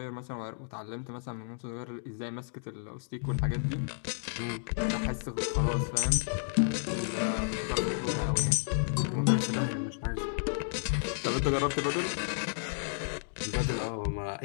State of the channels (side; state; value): right; silent; digital silence